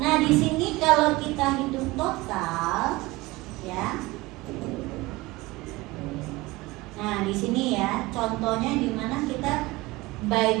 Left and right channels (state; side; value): quieter; left; 21.1 dB